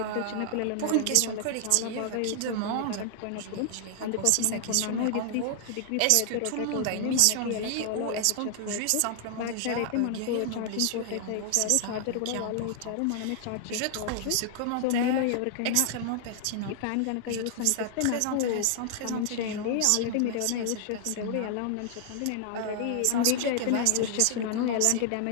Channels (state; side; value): different; both; correlation 0.00